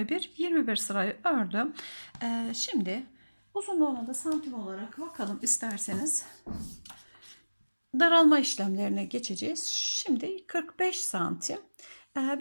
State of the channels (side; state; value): both; inverted; correlation -1.00